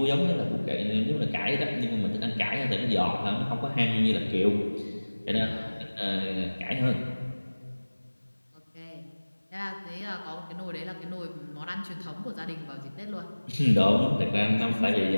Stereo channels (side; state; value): both; inverted; correlation -1.00